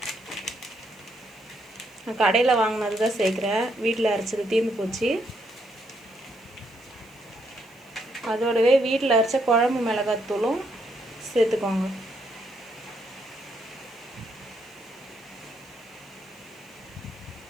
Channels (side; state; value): right; noise; hiss, 30 dB below the sound